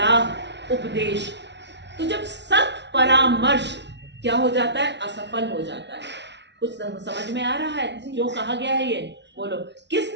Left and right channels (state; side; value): late; left; 0.51 ms